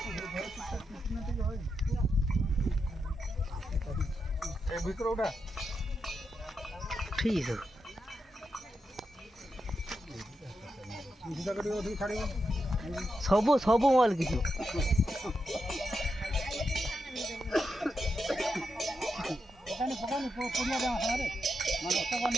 ଏ ଭିତର ଉଠା ଠିକ୍ ଅଛି ସବୁ ମୋବାଇଲ କିଛି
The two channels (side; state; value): both; normal; correlation 0.86